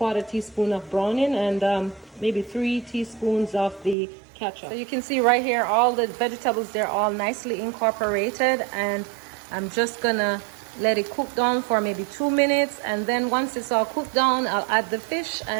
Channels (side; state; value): left; drops out; at 4.0 s